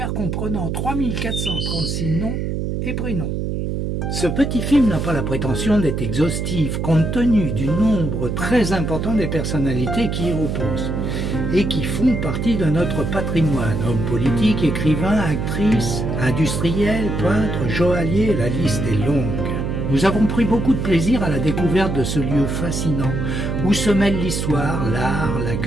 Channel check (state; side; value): noise; right; hum, 2 dB below the sound